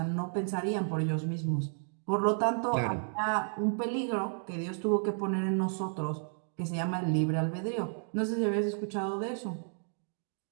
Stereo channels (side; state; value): left; silent; digital silence